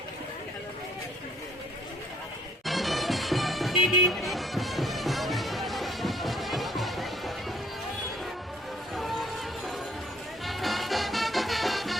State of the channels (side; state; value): both; normal; correlation 0.61